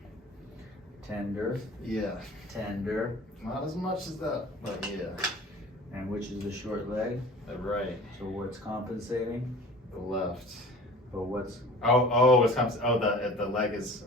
Tender, Yeah. tender. Not as much as that, but yeah. And which is the short leg? The right. So what's compensating? The left. But what's The leg is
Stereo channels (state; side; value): normal; both; correlation 0.43